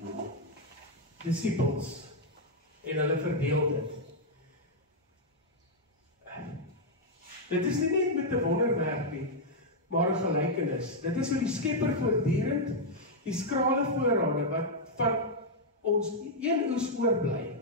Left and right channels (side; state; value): both; normal; correlation -0.03